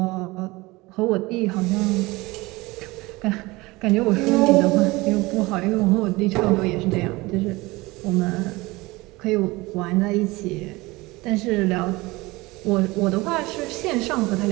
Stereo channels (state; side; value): quieter; left; 21.9 dB